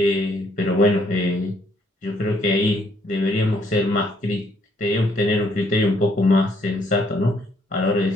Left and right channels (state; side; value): normal; both; correlation 0.68